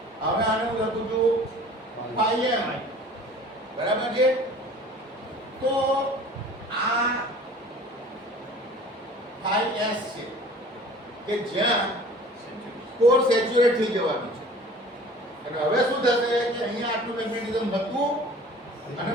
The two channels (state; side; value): normal; both; correlation 0.46